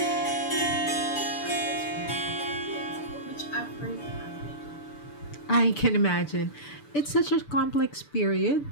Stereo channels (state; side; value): late; right; 6.8 ms